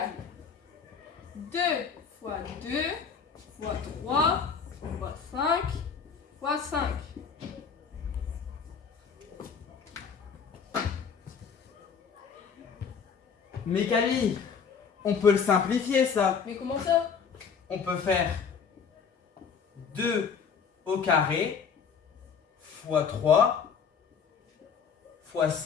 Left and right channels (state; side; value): quieter; right; 6.3 dB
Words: 2 fois 2 fois 3 fois 5 fois 5. Mais Camille, on peut le simplifier ça. Mais comment ça? On peut faire 2 au carré fois 3 fois